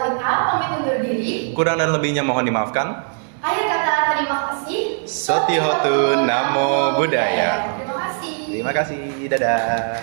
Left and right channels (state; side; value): silent; left; 60 dB below the other